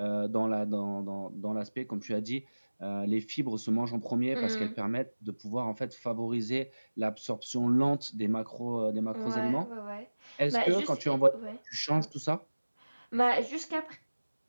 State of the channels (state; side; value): inverted; both; correlation -1.00